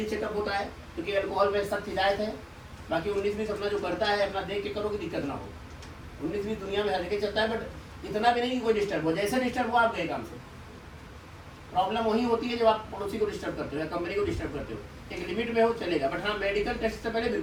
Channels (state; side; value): identical; both; correlation 1.00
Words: चेकअप होता है, क्योंकि अल्कोहल में सख्त हिदायत है। बाकी 19-20 अपना जो करता है अपना देख के करो कि दिक्कत ना हो। 19-20 दुनिया में हर जगह चलता है, बट इतना भी नहीं कि कोई डिस्टर्ब हो, जैसे डिस्टर्ब हो आप गए काम से। प्रॉब्लम वही होती है जब आप पड़ोसी को डिस्टर्ब करते हो या कंपनी को डिस्टर्ब करते हो। एक लिमिट में हो चलेगा, बट हाँ मेडिकल टेस्ट से पहले